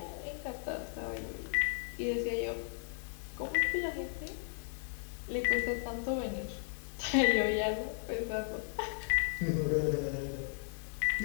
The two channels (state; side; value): silent; right; digital silence